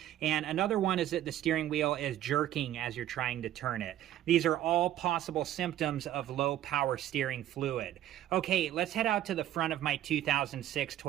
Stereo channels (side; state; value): left; quieter; 12.5 dB